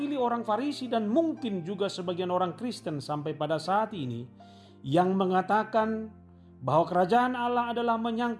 orang Farisi dan mungkin juga sebagian orang Kristen sampai pada saat ini, yang mengatakan bahwa kerajaan Allah adalah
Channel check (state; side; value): identical; both; correlation 1.00